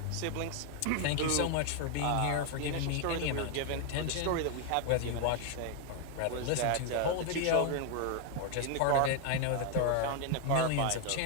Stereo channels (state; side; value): different; both; correlation 0.00